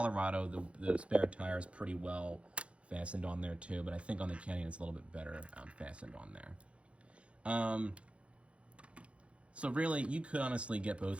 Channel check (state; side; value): late; left; 0.061 ms